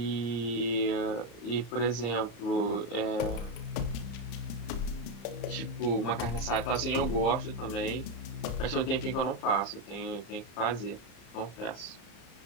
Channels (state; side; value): late; right; 35 ms